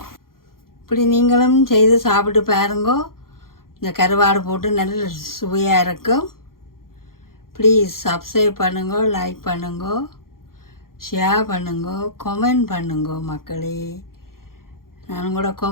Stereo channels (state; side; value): late; right; 0.92 ms